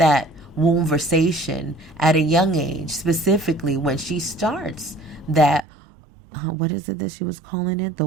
womb versation at a young age, specifically when she starts that, what is it that she was calling it? The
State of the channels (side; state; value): left; drops out; at 5.7 s